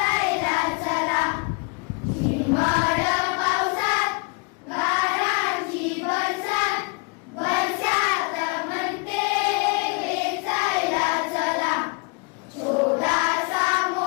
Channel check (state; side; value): quieter; right; 31.1 dB